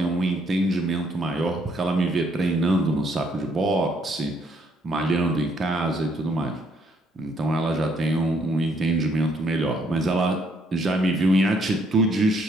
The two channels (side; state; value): both; normal; correlation 0.68